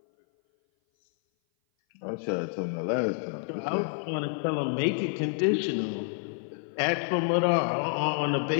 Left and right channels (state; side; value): silent; right; 57 dB below the other